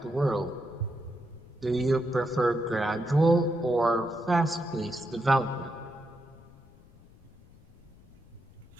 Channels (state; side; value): noise; left; rumble, 24 dB below the sound